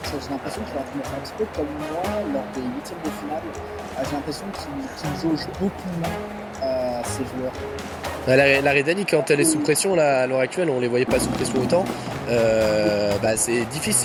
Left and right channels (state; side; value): identical; both; correlation 1.00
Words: J'ai l'impression qu'il est en train de faire un petit peu comme moi lors des huitièmes de finale. J'ai l'impression qu'il jauge beaucoup moins ses joueurs. La Rhédanie, quand elle est sous pression, là, à l'heure actuelle, on les voyait pas sous pression autant. C'est